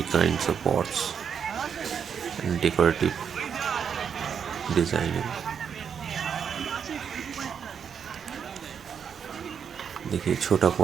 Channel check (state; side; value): quieter; left; 7.3 dB